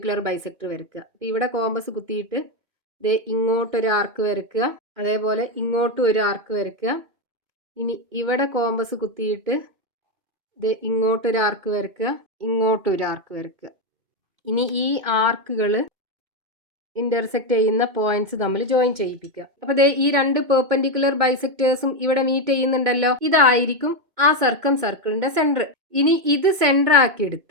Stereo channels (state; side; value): late; left; 2.1 ms